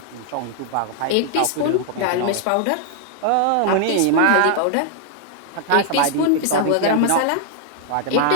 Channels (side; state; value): both; different; correlation 0.00